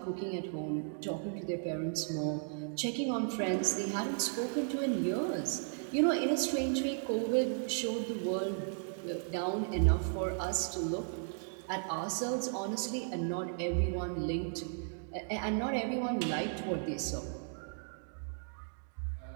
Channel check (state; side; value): silent; left; digital silence